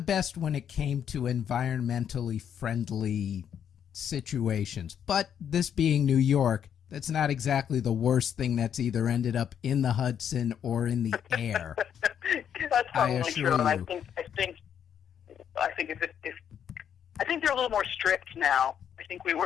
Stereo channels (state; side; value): quieter; right; 8.7 dB